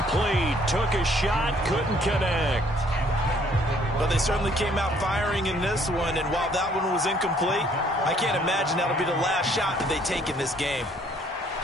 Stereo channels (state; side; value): normal; both; correlation 0.63